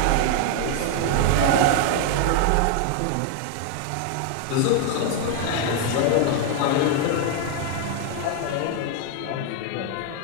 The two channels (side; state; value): both; different; correlation 0.00